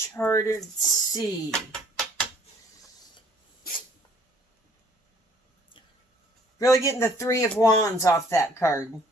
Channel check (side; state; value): both; normal; correlation 0.58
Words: Sea. Really getting the Three of Wands off that card.